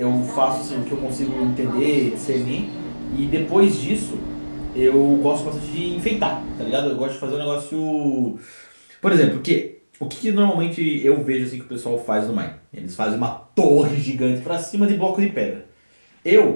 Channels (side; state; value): both; inverted; correlation -1.00